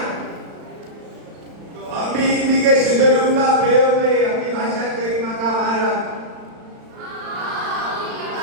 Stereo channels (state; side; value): late; left; 35 ms